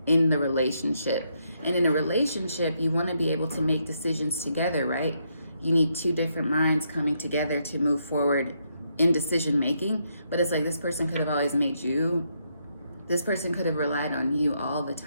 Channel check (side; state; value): both; inverted; correlation -0.77